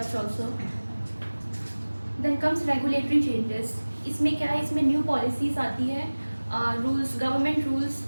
also. Then comes regulatory changes. इसमें क्या है, इसमें new policies आती है, rules, government rules,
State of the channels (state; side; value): inverted; both; correlation -1.00